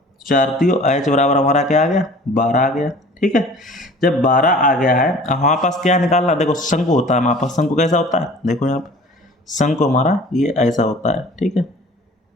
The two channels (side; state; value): both; normal; correlation 0.46